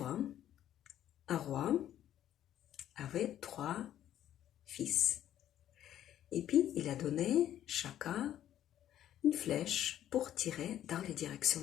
un roi avait 3 fils. Et puis, il a donné chacun une flèche pour tirer dans les directions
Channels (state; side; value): quieter; right; 11.5 dB